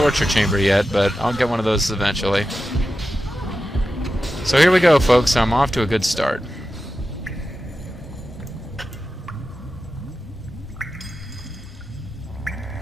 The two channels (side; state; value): both; normal; correlation 0.91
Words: chamber yet, but I'll get one of those eventually. So here we go, folks. I'm off to a good start.